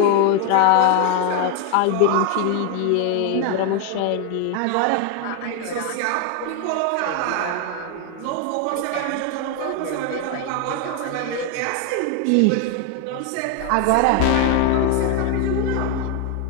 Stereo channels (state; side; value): different; both; correlation 0.01